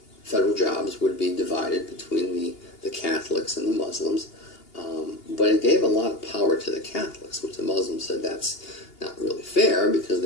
federal jobs would be divided between the Catholics and the Muslims, but it gave a lot of power to the Catholics, which the Muslims said that's not really fair because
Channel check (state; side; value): late; right; 2.8 ms